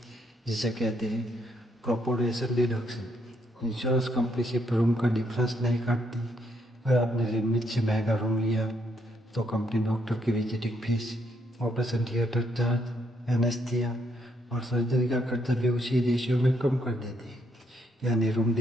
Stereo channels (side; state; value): both; normal; correlation 0.74